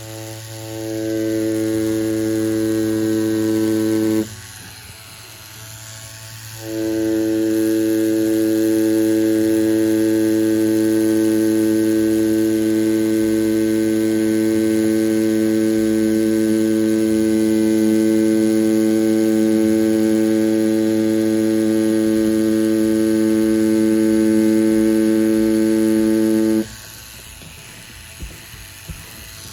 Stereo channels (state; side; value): identical; both; correlation 1.00